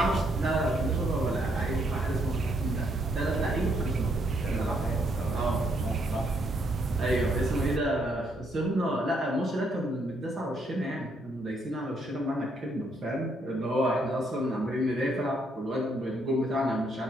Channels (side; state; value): both; normal; correlation 0.73